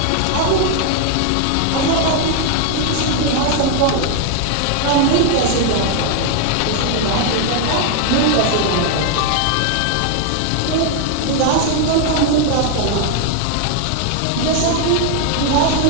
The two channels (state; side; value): different; both; correlation 0.00